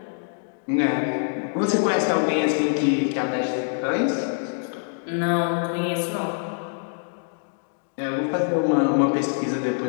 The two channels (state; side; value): silent; right; 62 dB below the other